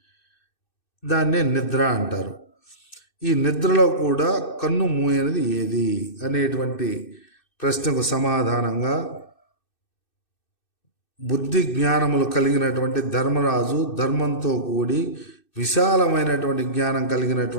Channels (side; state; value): right; late; 2.6 ms